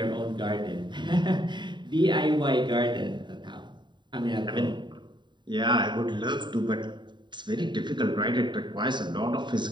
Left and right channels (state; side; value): late; left; 0.22 ms